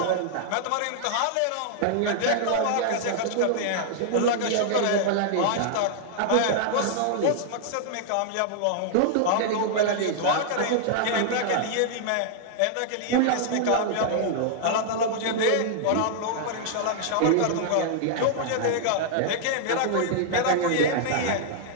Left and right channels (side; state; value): both; different; correlation -0.01